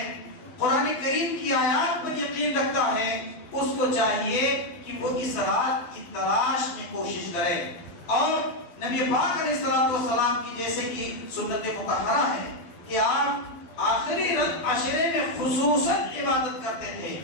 قرآن کریم کی آیات پر یقین رکھتا ہے، اس کو چاہیے کہ وہ اس رات کی تلاش میں کوشش کرے۔ اور نبی پاک علیہ الصلوۃ والسلام کی جیسے کہ سنت مطہرہ ہے کہ آپ آخری عشرے میں خصوصاً عبادت کرتے تھے،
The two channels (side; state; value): right; late; 12 ms